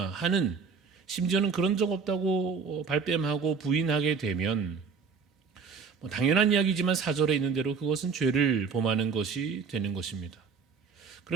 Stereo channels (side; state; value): left; quieter; 5.4 dB